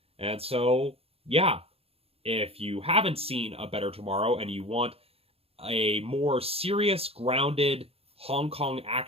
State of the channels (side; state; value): left; late; 0.28 ms